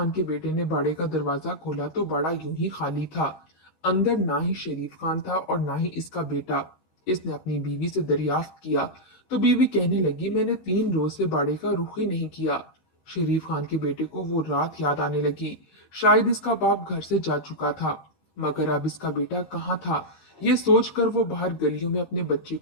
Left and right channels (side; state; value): right; late; 13 ms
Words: के बेटे ने बाड़े का दरवाजा खोला तो बाड़ा यूं ही खाली था। अंदर ना ही शरीफ खान था और ना ही इसका बेटा। इसने अपनी बीवी से दरियाफ्त किया तो बीवी कहने लगी, मैंने 3 रोज से बाड़े का रुख ही नहीं किया। शरीफ खान के बेटे को वो रात याद आने लगी। शायद इसका बाप घर से जा चुका था, मगर अब इसका बेटा कहाँ था। ये सोचकर वो बाहर गलियों में अपने बच्चे